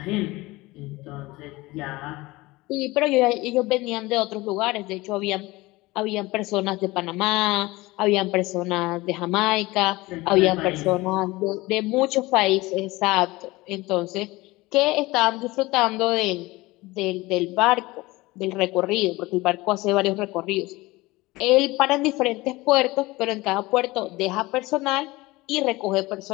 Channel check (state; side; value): quieter; right; 20.7 dB